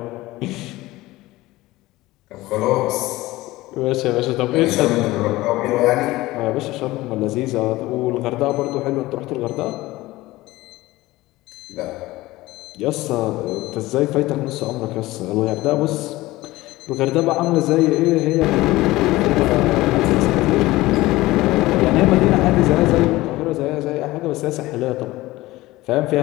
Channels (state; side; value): quieter; right; 18.5 dB